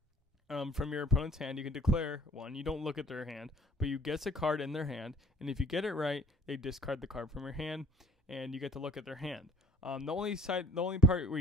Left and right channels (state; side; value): normal; both; correlation 0.56